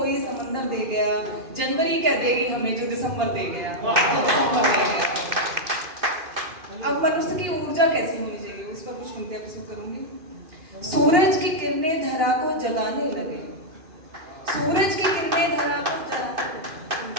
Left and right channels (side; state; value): left; late; 2.5 ms